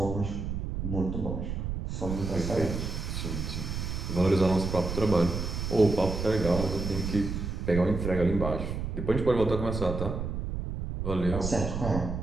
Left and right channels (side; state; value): right; noise; rumble, 4 dB below the sound